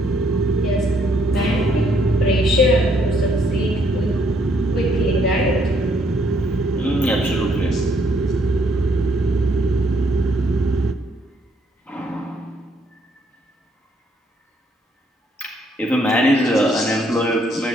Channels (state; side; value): normal; both; correlation 0.69